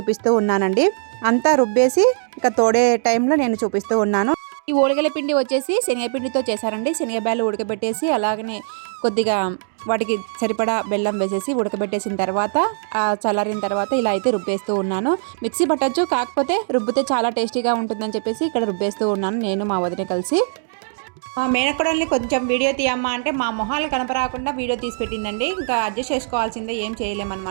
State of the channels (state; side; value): silent; left; digital silence